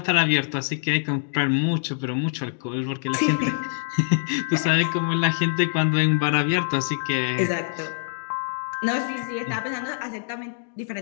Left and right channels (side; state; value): right; silent; digital silence